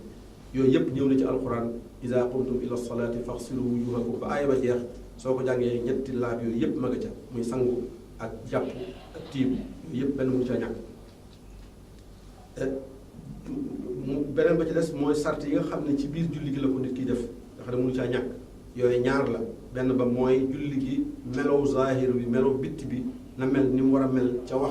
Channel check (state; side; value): identical; both; correlation 1.00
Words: yooyu yëpp ñëw na ci alquran iza qumtum ila salaati faghsilu wujuhakum ba aaya ba jeex soo ko jàngee ñetti laab yooyu yëpp ma nga ca muy sangu ak jàpp ak tiim yooyu yëpp benn mënu ca ñàkk beneen ba ci des mooy sart yi nga xam ne ci biir julli gi la ko nit ki def nga xam ne mënu caa ñàkk yooyu ñaar la benn ba mooy julli gi melow zahir bi melow bitti bi na mel ni mu war a mel ca